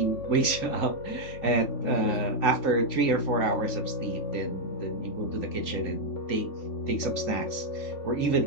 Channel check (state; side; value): late; right; 3.5 ms